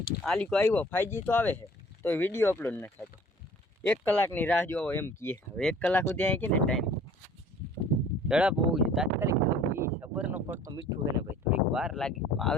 આલીકો આવ્યો 5G તો આવે છે તો વિડીયો અપલોડ ન થતો. 1 કલાકની રાહ જોવો એમ કહે. હવે 1 કલાક સુધી અહીં કે ને ટાઈમ ઝડપ હોવું જોઈએ. તાત્કાલિક થવું એ ખબરનો પડતો મીઠું છે ને ભાઈ, થોડીક વાર લાગે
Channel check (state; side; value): normal; both; correlation 0.51